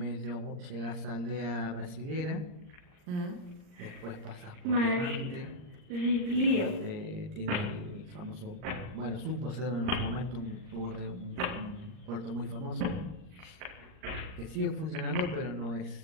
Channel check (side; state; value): left; late; 39 ms